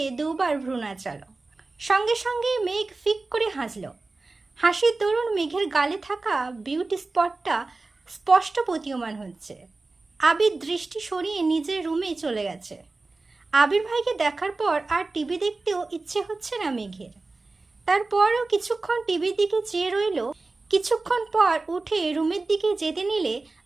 দুবার ভ্রু নাচালো। সঙ্গে সঙ্গে মেঘ ফিক করে হাসল। হাসির দরুন মেঘের গালে থাকা বিউটি স্পটটা স্পষ্ট প্রতীয়মান হচ্ছে। আবির দৃষ্টি সরিয়ে নিজের রুমে চলে গেছে। আবির ভাইকে দেখার পর আর টিভি দেখতেও ইচ্ছে হচ্ছে না মেঘের। তারপরও কিছুক্ষণ টিভির দিকে চেয়ে রইল। কিছুক্ষণ পর উঠে রুমের দিকে যেতে নিলে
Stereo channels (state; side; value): quieter; left; 3.5 dB